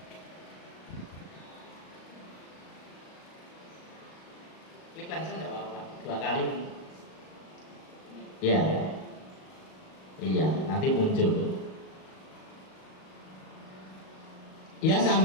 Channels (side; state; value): right; late; 38 ms